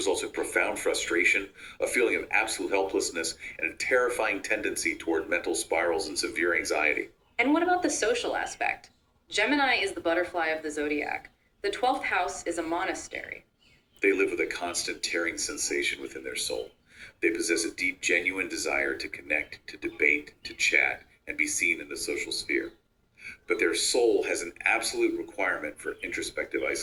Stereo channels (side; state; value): both; identical; correlation 1.00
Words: in profound frustration, a feeling of absolute helplessness, and a terrifying tendency toward mental spirals and severe anxiety. And what about the social aspect? Gemini is the butterfly of the zodiac. The 12th house is a monastery. They live with a constant tearing sensation within their soul. They possess a deep, genuine desire to connect, to debate, to chat, and be seen in the social sphere. but their soul has an absolute requirement for introspective